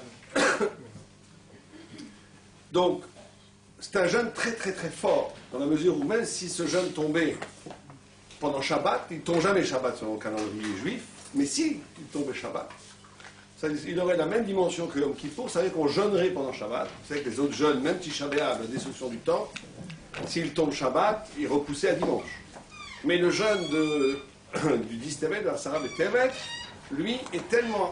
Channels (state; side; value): identical; both; correlation 1.00